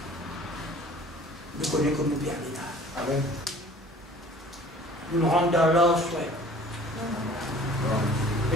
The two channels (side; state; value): both; normal; correlation 0.49